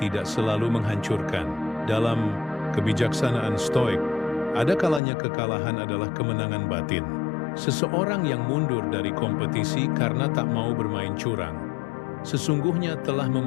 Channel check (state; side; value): drops out; right; at 5.0 s